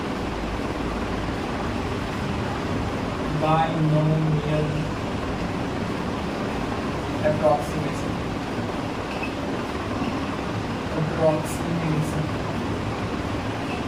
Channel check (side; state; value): both; identical; correlation 1.00